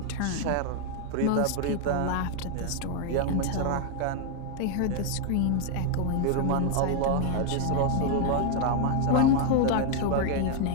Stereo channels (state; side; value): different; both; correlation 0.00